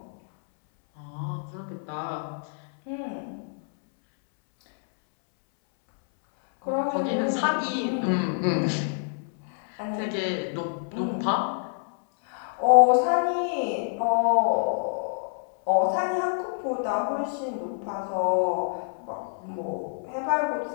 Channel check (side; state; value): right; silent; 60 dB below the other